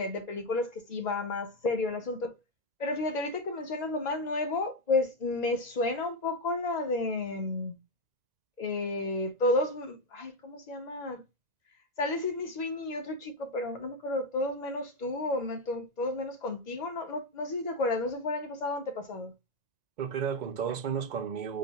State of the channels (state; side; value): late; left; 1.9 ms